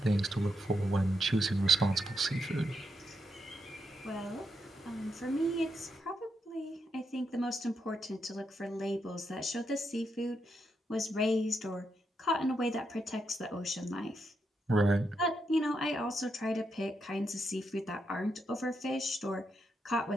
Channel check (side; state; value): both; normal; correlation 0.82